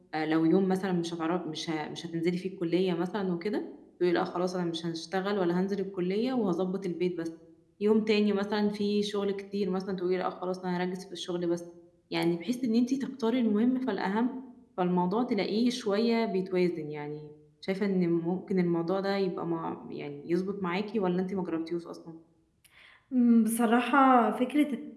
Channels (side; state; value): both; identical; correlation 1.00